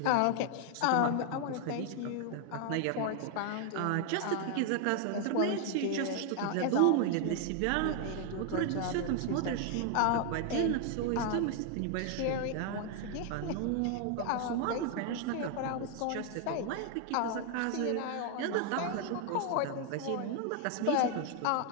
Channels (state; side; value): different; both; correlation 0.00